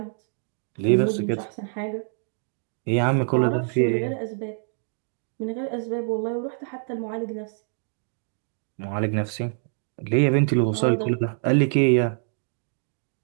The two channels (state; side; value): silent; left; 59 dB below the other